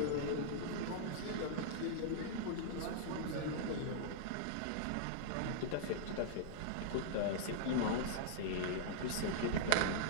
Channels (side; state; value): both; different; correlation -0.02